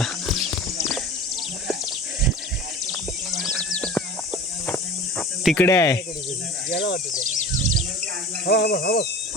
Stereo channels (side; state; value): both; normal; correlation 0.37